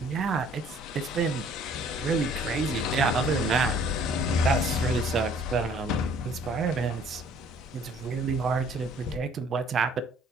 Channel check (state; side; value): normal; both; correlation 0.56